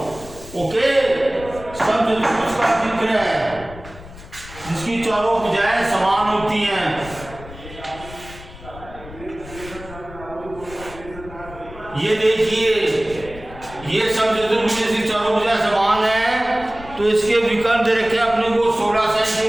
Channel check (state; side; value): noise; left; rumble, 16 dB below the sound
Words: ओके, समचतुर्भुज का जिक्र है जिसकी चारों भुजाएं समान होती हैं। ये देखिए, ये समचतुर्भुज जिसकी चारों भुजाएं समान है, तो इसके विकर्ण दे रखे अपने को 16